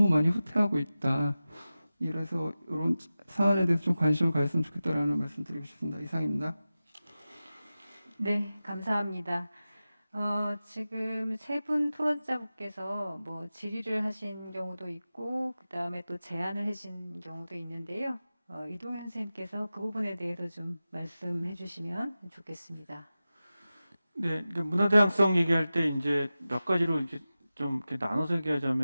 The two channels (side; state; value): both; inverted; correlation -0.95